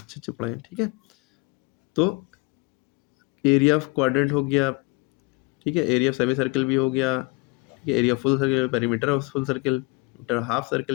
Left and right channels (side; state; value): right; quieter; 25.6 dB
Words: अच्छे पढ़े हैं, ठीक है। तो एरिया ऑफ क्वाड्रेंट हो गया, ठीक है, एरिया ऑफ सेमी सर्कल भी हो गया, ठीक है, area full circle, perimeter of full circle, half